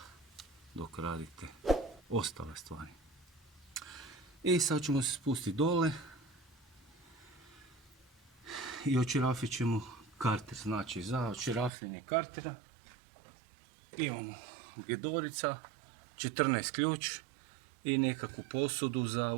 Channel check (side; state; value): left; drops out; at 11.7 s